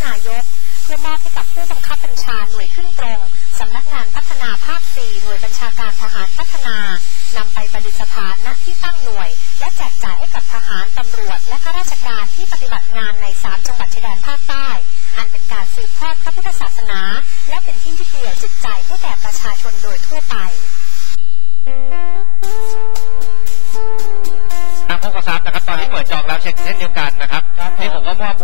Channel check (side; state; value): right; silent; 57 dB below the other